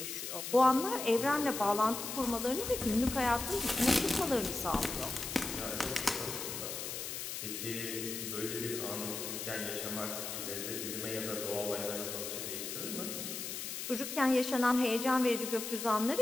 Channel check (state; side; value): noise; left; hiss, 5 dB below the sound